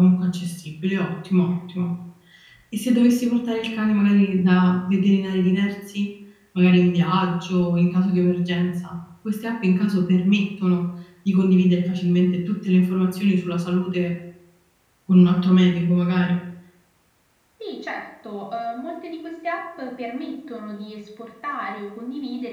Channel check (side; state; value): both; identical; correlation 1.00